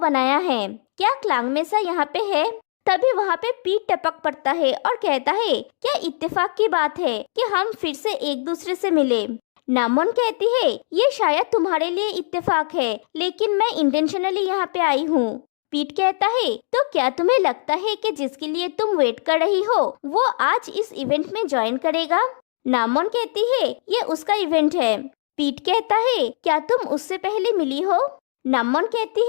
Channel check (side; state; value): right; silent; digital silence